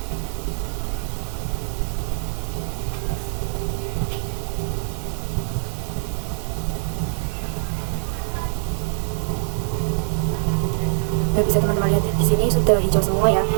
Nah, bisa teman-teman lihat di sini sudah hijau semua ya.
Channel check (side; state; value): left; silent; 60 dB below the other